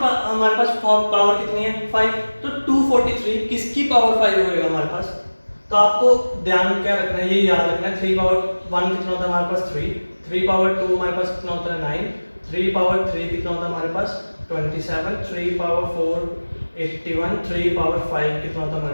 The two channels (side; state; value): both; inverted; correlation -1.00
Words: हमारे पास पावर कितनी है 5, तो 243 किसकी पावर 5 होएगा हमारे पास, तो आपको ध्यान क्या रखना है, ये याद रखना है 3 पावर 1 कितना होता है हमारे पास 3 पावर 2 हमारे पास कितना होता है 9, 3 पावर 3 कितना होता है हमारे पास 27, 3 पावर 4 81, 3 पावर 5 कितना होता है